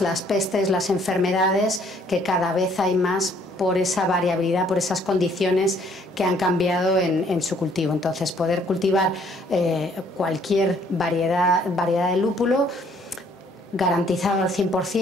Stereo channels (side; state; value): both; normal; correlation 0.62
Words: las pestes, las enfermedades, que cada vez hay más por esa variabilidad, por esas condiciones que han cambiado en su cultivo. Entonces, poder cultivar cualquier variedad de lúpulo, garantizado al